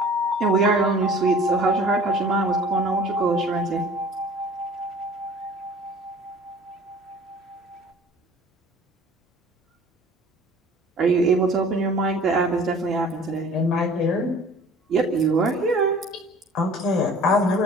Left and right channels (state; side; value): normal; both; correlation 0.48